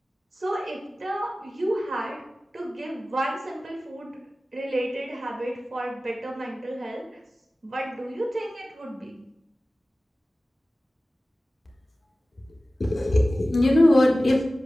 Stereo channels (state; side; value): normal; both; correlation 0.96